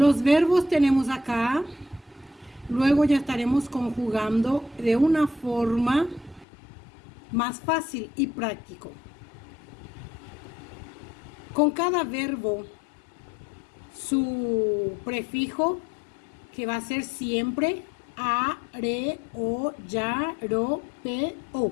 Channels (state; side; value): drops out; right; at 6.5 s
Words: verbos tenemos acá. Luego ya estaremos conjugando de una forma más fácil y práctico. Con cada verbo, su prefijo, que va a ser siempre a, re, o, ya, ro, pe, o,